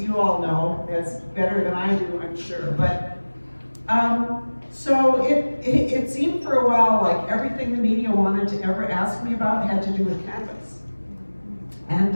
you all know as better than I do, I'm sure. But, so it seemed for a while like everything the media wanted to ever ask me about had to do with cannabis. And,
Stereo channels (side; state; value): both; inverted; correlation -1.00